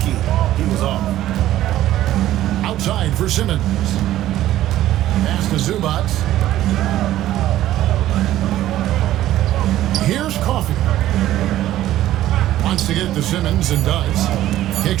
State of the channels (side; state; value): left; quieter; 13.7 dB